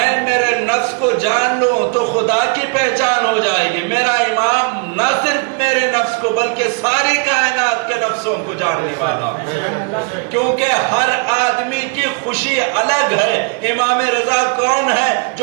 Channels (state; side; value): quieter; left; 35.6 dB